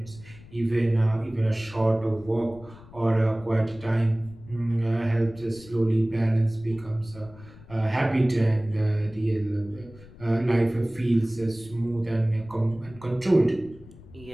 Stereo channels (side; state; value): left; noise; rumble, 20 dB below the sound